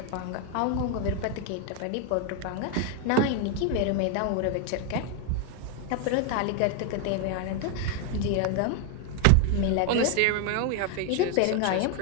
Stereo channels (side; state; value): both; different; correlation 0.01